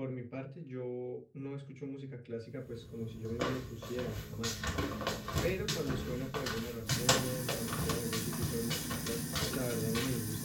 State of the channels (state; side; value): identical; both; correlation 1.00